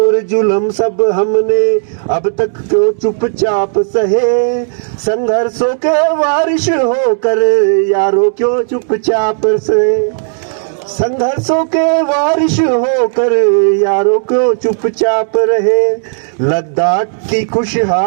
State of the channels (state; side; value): silent; left; digital silence